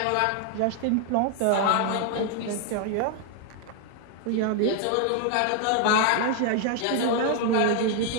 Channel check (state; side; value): different; both; correlation 0.00